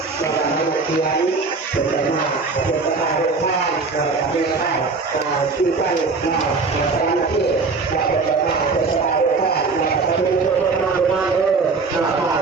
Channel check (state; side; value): quieter; left; 4.3 dB